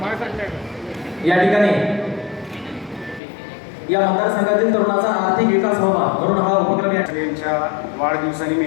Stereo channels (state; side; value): drops out; right; at 3.2 s